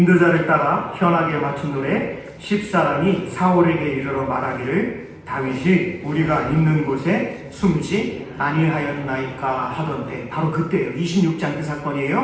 따라 현악에 맞춘 노래. 10사람이 사울에게 이르러 말하기를, 다윗이 우리가 있는 곳에 숨지 아니하였나이까 하던데, 바로 그때예요. 26장 그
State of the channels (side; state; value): both; identical; correlation 1.00